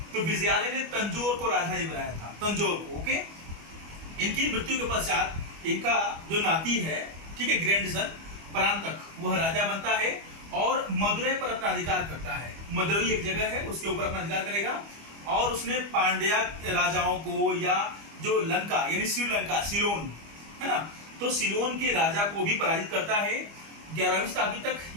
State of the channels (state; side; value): late; left; 25 ms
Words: तो विजयालय ने तंजौर को राजधानी बनाया था, तंजौर को। ओके। इनकी मृत्यु के पश्चात इनका जो नाती है, ठीक है, ग्रैंडसन परांतक, वह राजा बनता है और मदुरै पर अपना अधिकार करता है। मदुरै एक जगह है, उसके ऊपर अपना अधिकार करेगा। और उसने पांड्या राजाओं को, या जो लंका यानी श्रीलंका, सिलोन, है ना, तो सिलोन के राजा को भी पराजित करता है। 11वीं शताब्दी तक